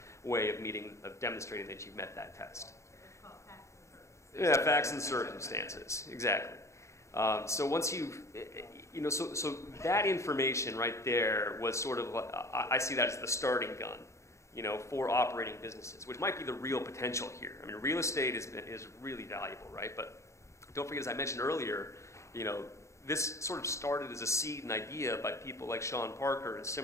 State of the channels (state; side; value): late; right; 0.14 ms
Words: way of demonstrating that you've met that test. Yeah, facts and circumstances, exactly. So once you've, so that information right there was sort of, I see that as the starting gun, for operating businesses, which might be the real potential here. I mean, real estate is really valuable, right? But don't forget, as I mentioned earlier, this sort of started as a seed and idea by people like Sean Parker and